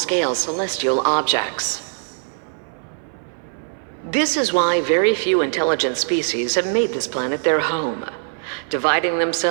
celestial objects. This is why very few intelligent species have made this planet their home, dividing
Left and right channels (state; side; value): silent; left; 57 dB below the other